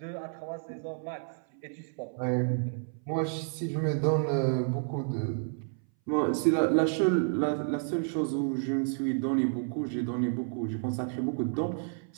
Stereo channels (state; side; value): silent; left; 57 dB below the other